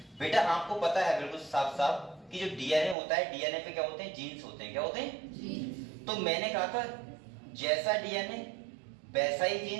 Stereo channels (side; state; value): left; drops out; at 3.0 s